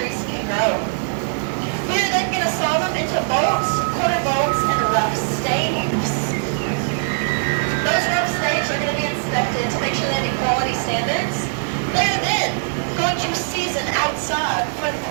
can grow. We are then going to saw them into bolts, quarter bolts, and rough staves. Those rough staves are going to be inspected to make sure they meet quality standards. They are then going to season outside for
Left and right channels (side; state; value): left; silent; digital silence